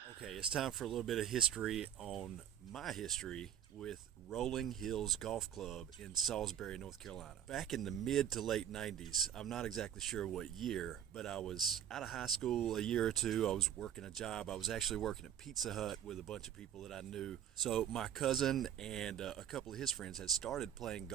Okay, it's time for a little bit of history on my history with Rolling Hills Golf Club in Salisbury, North Carolina. Back in the mid to late 90s, I'm not exactly sure what year, but I was out of high school a year or two. I was working a job. I was actually working at Pizza Hut with a bunch of people that I knew. So my cousin and a couple of his friends had started playing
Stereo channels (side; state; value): left; quieter; 10.1 dB